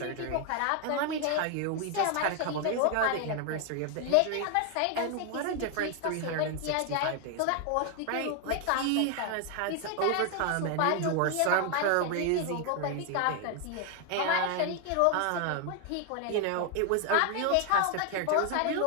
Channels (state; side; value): different; both; correlation 0.00